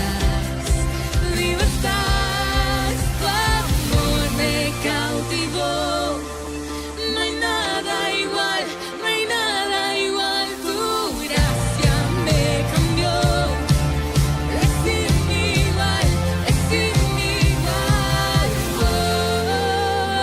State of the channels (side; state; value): both; identical; correlation 1.00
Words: vivo estás, tu amor me cautivó. No hay nada igual, no hay nada igual. Tu gracia me cambió. Es sin igual, es sin igual.